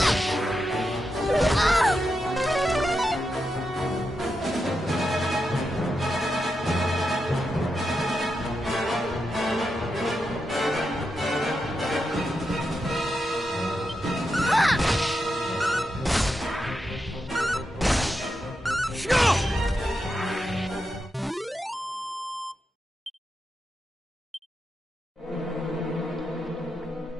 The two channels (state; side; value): normal; both; correlation 0.86